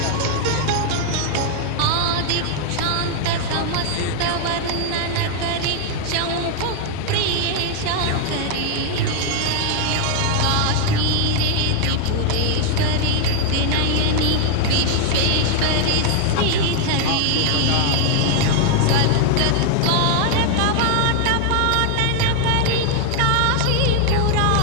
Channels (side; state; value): both; different; correlation 0.00